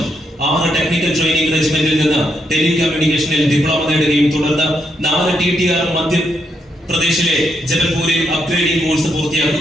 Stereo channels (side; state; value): both; normal; correlation 0.79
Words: 6 ടെക്നിക്കൽ ട്രെയിനിംഗ് റെജിമെന്റിൽ നിന്ന് ടെലികമ്മ്യൂണിക്കേഷനിൽ ഡിപ്ലോമ നേടുകയും തുടർന്ന് 4 TTR മധ്യപ്രദേശിലെ ജബൽപൂരിൽ അപ്ഗ്രേഡിംഗ് കോഴ്സ്